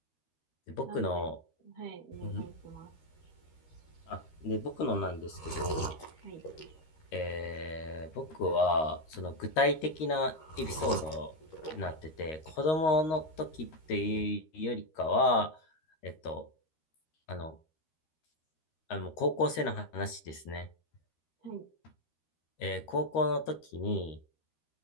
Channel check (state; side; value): late; right; 13 ms